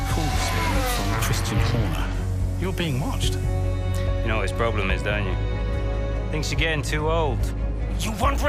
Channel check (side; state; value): both; identical; correlation 1.00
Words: call this morning from Christian Horner. You're being watched. You know what his problem is, don't you? Thinks you're getting too old. You want